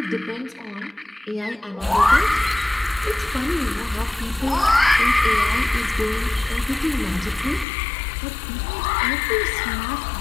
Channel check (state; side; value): drops out; right; at 7.7 s